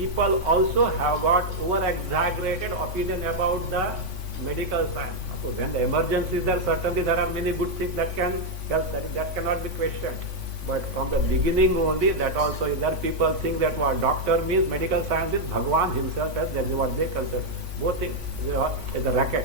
also have got over-exaggerated opinion about the medical science. When the emergency is there, certainly there are many good things that can help, that cannot be questioned. But from the beginning only, that also is there. People think that what doctor means, medical science is Bhagwan himself, as that is what they consider. Both things is a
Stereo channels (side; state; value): left; late; 3.5 ms